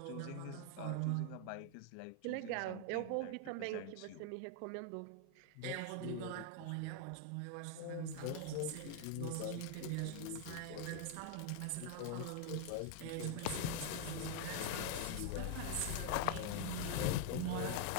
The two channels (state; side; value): different; both; correlation 0.00